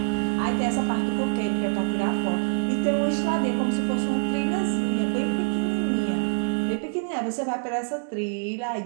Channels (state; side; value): silent; left; digital silence